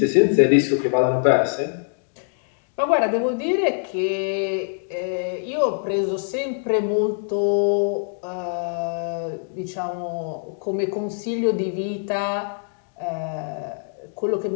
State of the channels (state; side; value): silent; right; digital silence